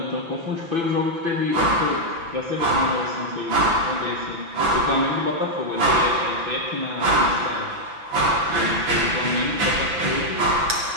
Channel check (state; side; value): late; left; 6.0 ms